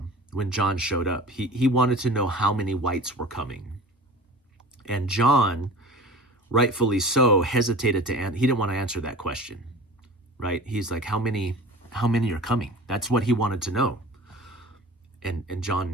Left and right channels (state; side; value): normal; both; correlation 0.40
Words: John showed up. He wanted to know how many whites were coming. And John, rightfully so, hesitated he didn't want to answer that question, right? He's like, how many are coming? That's what he wanted to know. And